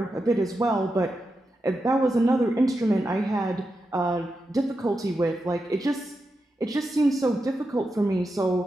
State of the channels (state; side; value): normal; both; correlation 0.88